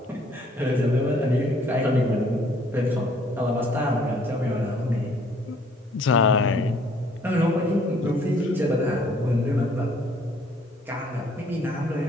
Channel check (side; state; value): both; normal; correlation 0.61